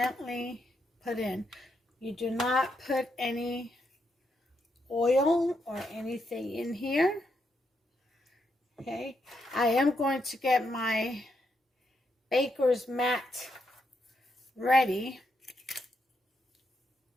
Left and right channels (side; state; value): both; normal; correlation 0.80